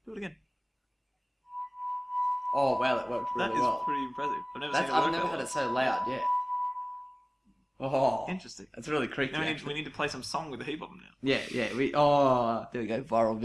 Do it again. Oh wow, that worked really That is well. pretty impressive. I've I've never had it so loud yet. Oh, Interesting. that's really creepy. Now actually. we need to play some song with the heap of them now. Yeah. There we go. Viral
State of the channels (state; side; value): identical; both; correlation 1.00